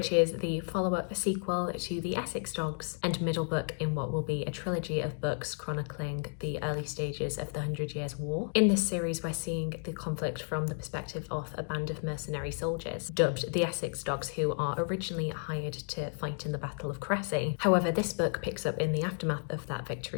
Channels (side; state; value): right; silent; 56 dB below the other